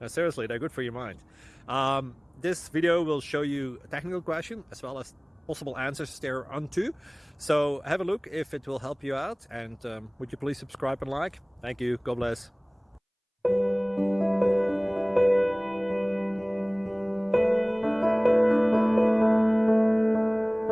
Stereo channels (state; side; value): identical; both; correlation 1.00